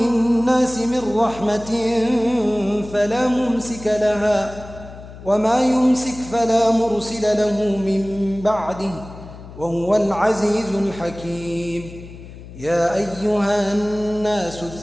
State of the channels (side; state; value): left; noise; hum, 16 dB below the sound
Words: من رحمة فلا ممسك لها وما يمسك فلا مرسل له من بعده وهو العزيز الحكيم يا أيها الناس